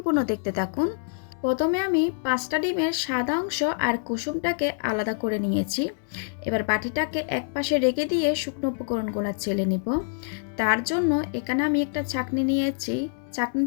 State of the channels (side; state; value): right; silent; digital silence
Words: দেখতে থাকুন। প্রথমে আমি 5টা ডিমের সাদা অংশ আর কুসুমটাকে আলাদা করে নিয়েছি। এবার বাটিটাকে এক পাশে রেখে দিয়ে শুকনো উপকরণগুলো চেলে নিব। তার জন্য এখানে আমি একটা চাকনি নিয়েছি।